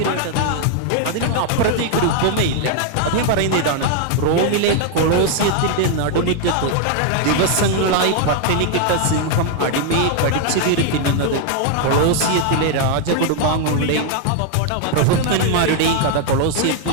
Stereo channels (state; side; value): different; both; correlation 0.00